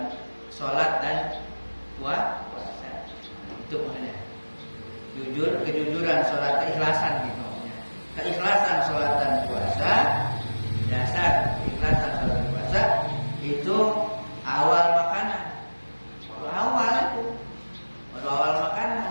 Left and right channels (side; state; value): both; inverted; correlation -1.00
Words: sholat dan puasa. Itu maksudnya jujur, kejujuran sholat, keikhlasan gitu maksudnya. Keikhlasan sholat dan puasa, dasar keikhlasan sholat dan puasa itu awal makanan. Baru awal makanan,